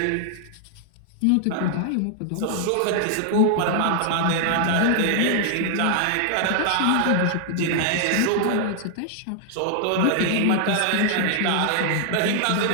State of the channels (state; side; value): different; both; correlation 0.00